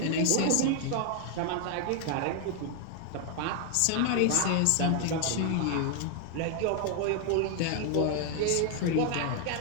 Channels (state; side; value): different; both; correlation 0.00